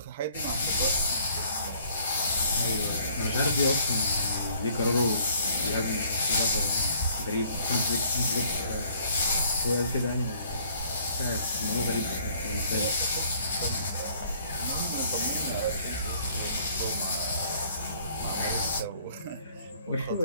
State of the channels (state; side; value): inverted; both; correlation -0.59